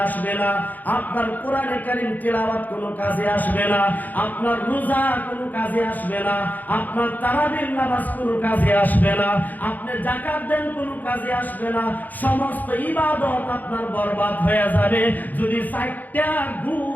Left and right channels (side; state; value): right; late; 0.083 ms